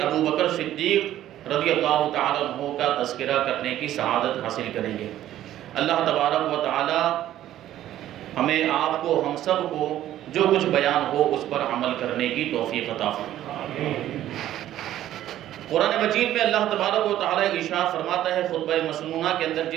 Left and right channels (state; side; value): quieter; left; 12.8 dB